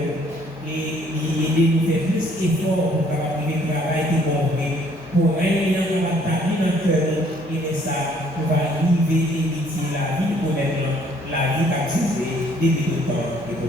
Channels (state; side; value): normal; both; correlation 0.62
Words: et il aide nous faire plus d'efforts pour travailler le travail qui est bon pour régner dans la table dans le cœur et ça on va arriver à éviter la vie pour maintenant, la vie qui a duré depuis le temps et